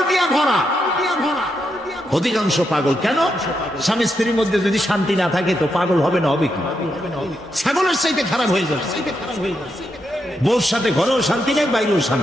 দিয়ে ভরা, অধিকাংশ পাগল। কেন? স্বামী স্ত্রীর মধ্যে যদি শান্তি না থাকে তো পাগল হবে না, হবে কি? ছাগলের চাইতে খারাপ হয়ে যাবে। বউর সাথে ঘরেও শান্তি নেই, বাইরেও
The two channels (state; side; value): normal; both; correlation 0.82